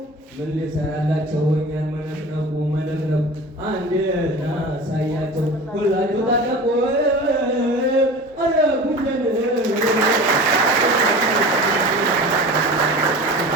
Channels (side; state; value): both; normal; correlation 0.36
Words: ምን ሊሰራላቸው እኛን መነቅነቁ መነቅነቁ አንድ እናሳያቸው ሁላችሁ ታጠቁ አረ ጉንደን